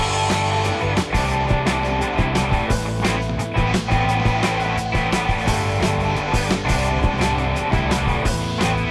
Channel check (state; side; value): identical; both; correlation 1.00